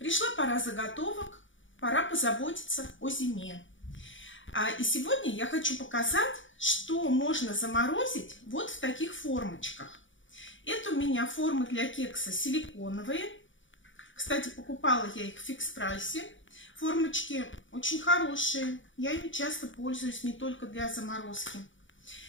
пора заготовок, пора позаботиться о зиме. И сегодня я хочу показать, что можно заморозить вот в таких формочках. Это у меня формы для кекса силиконовые. Кстати, покупала я их в фикс-прайсе. Формочки очень хорошие. Я ими часто пользуюсь не только для заморозки.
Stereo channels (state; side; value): late; right; 0.56 ms